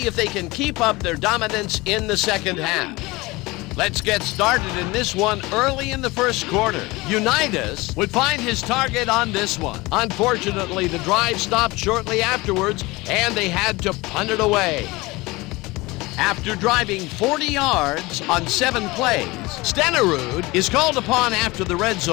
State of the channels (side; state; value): right; quieter; 22.2 dB